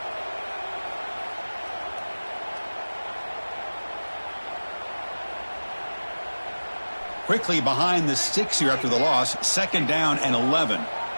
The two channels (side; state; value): both; inverted; correlation -1.00